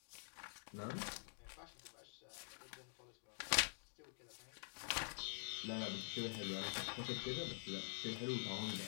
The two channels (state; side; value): silent; right; digital silence